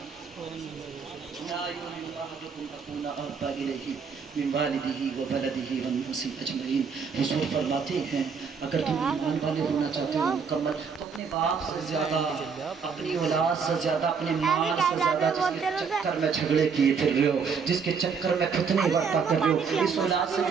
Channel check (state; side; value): quieter; left; 5.9 dB